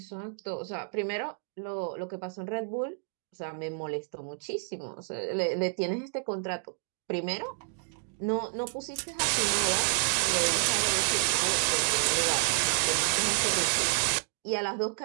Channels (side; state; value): left; silent; digital silence